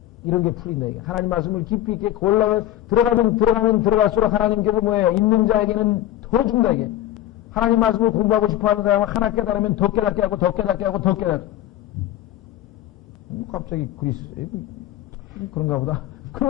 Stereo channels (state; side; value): quieter; right; 13.4 dB